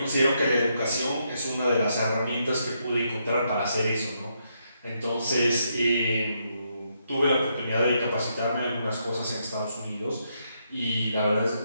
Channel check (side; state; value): both; inverted; correlation -0.78